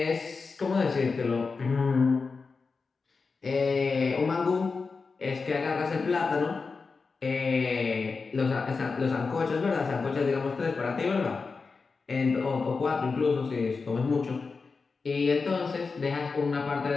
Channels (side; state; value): right; quieter; 4.6 dB